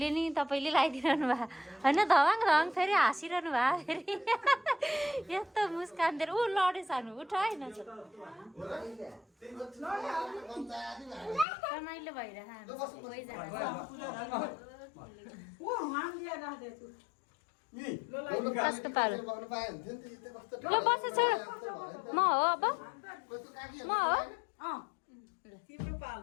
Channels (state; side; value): drops out; right; at 11.5 s